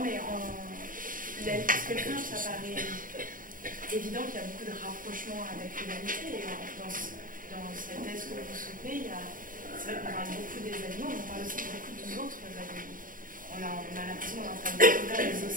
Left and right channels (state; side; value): late; left; 0.40 ms